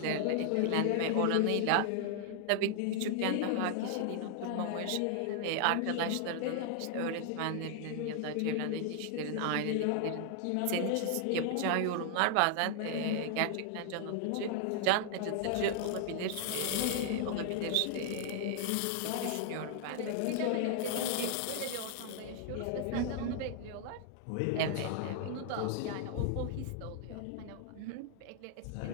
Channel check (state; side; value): different; both; correlation 0.00